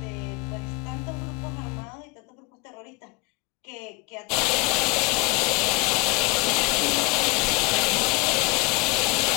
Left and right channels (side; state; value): right; quieter; 27.1 dB